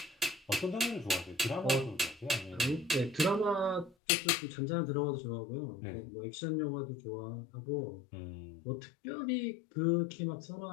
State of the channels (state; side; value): drops out; right; at 4.0 s